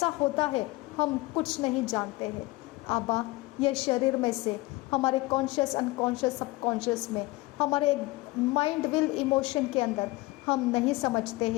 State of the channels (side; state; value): right; quieter; 21.1 dB